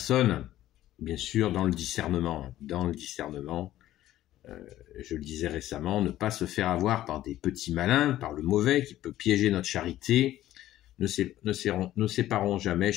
bien sûr, dans le discernement. Dans le discernement, je le disais récemment, ne pas se faire avoir par des petits malins, par le mauvais qui peut piéger notre charité. Ne séparons jamais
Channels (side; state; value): right; quieter; 13.9 dB